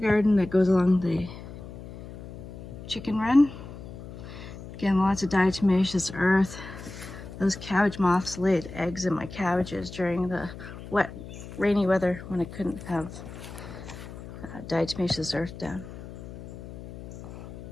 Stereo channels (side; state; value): left; noise; hum, 13 dB below the sound